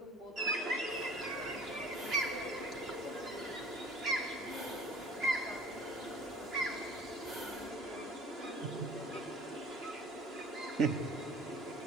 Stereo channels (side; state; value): both; normal; correlation 0.47